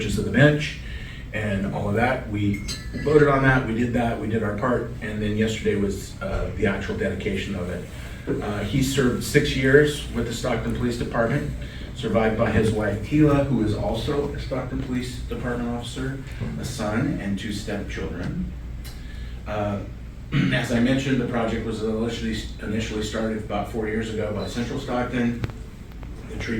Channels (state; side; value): identical; both; correlation 1.00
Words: of the bench and all of that. We voted on that, we did our part, and then yesterday was the actual dedication of it. He served 6 years with the Stockton Police Department, survived by his wife Tila, who is also a Stockton Police Department officer, a son, and 2 stepchildren. As I mentioned, the project was initially started about 4 years ago by Central Stockton. The tree